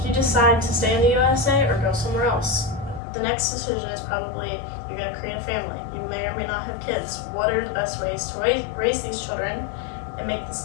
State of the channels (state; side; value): drops out; right; at 3.0 s